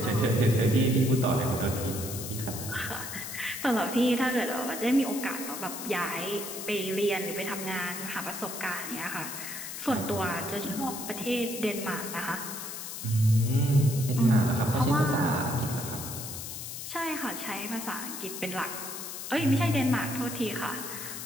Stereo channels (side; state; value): left; noise; hiss, 8 dB below the sound